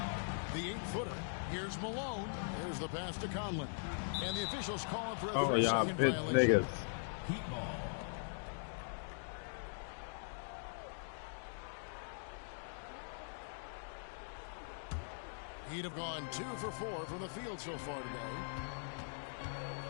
The 8-footer. Here's Malone. There's the pass to Conlon. And the officials call for a 3-second violation. Niggas. Heat ball. He'd have gone 2 for 4 from the field so far today.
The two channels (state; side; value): silent; right; digital silence